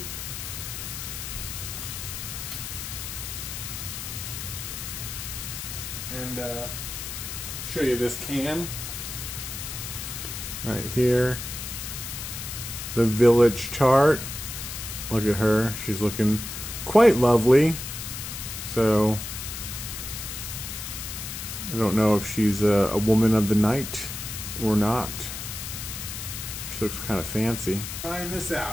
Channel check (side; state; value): left; noise; hiss, 7 dB below the sound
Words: And show you this can right here. The Village Tart. Look at her. She's looking quite lovely. So I don't know if she's a woman of the night or not. She looks kind of fancy. Trying this